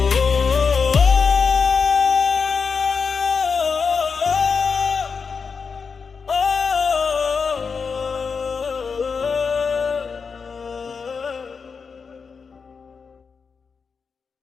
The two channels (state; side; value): quieter; right; 5.4 dB